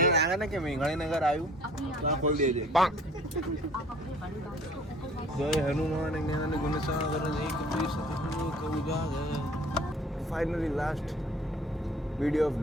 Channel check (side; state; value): both; normal; correlation 0.52